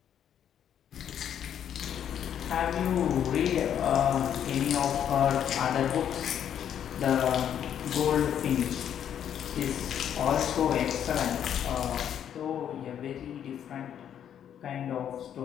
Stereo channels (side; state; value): right; quieter; 9.4 dB